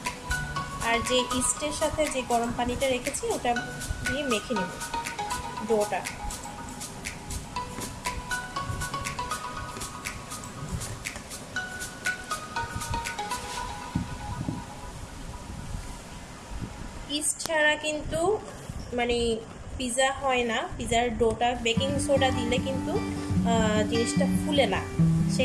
আর যে ইস্টের সাথে যে গরম পানিটা রেখেছি ওটা দিয়ে মেখে নেব ডোটা। ইস্ট ছাড়া কিন্তু মানে পিৎজা হয় না। পিৎজার ডোটা বেকিং সোডা দিলে কিন্তু জিনিসটা ফুলে না, সে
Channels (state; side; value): identical; both; correlation 1.00